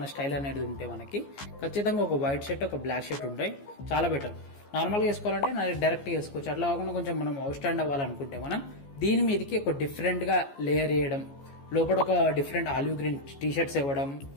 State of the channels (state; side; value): late; right; 14 ms